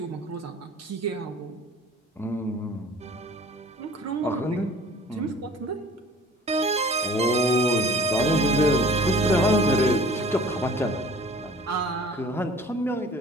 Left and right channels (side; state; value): both; normal; correlation 0.47